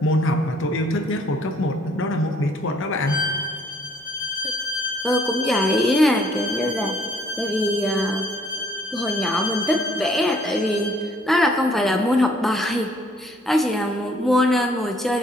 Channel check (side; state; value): both; normal; correlation 0.62